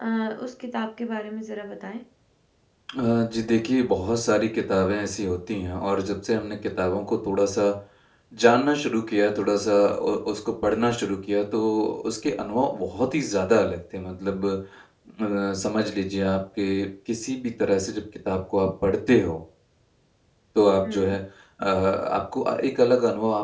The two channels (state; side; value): identical; both; correlation 1.00